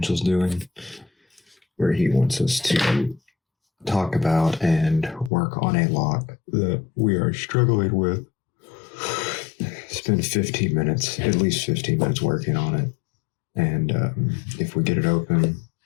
doing, where he wants us to talk about and work on a lock that we are struggling with. Spend 15 minutes, at least 15 minutes working on it. And if we get it open,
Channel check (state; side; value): drops out; right; at 5.3 s